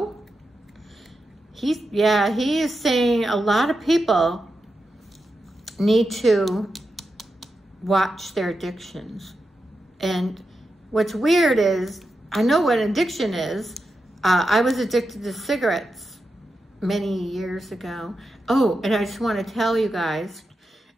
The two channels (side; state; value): both; normal; correlation 0.88